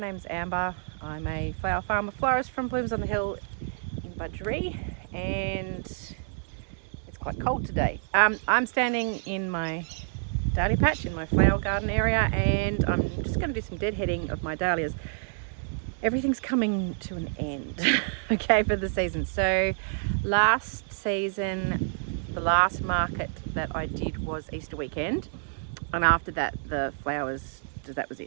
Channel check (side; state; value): left; silent; digital silence